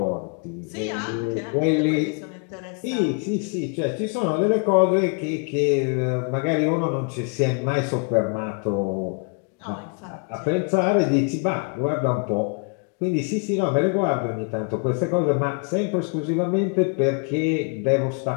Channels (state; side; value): quieter; right; 35.9 dB